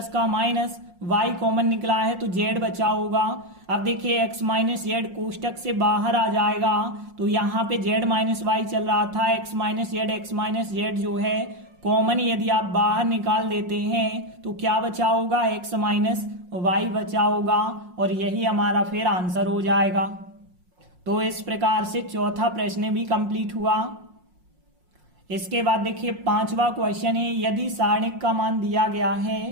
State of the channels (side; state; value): left; late; 5.6 ms